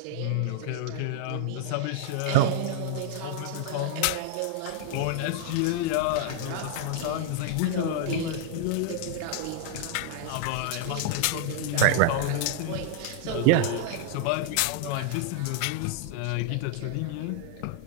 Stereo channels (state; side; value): different; both; correlation -0.01